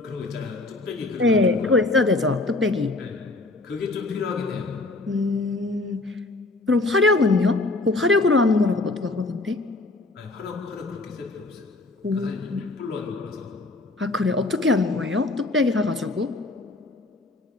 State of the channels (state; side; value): quieter; right; 3.1 dB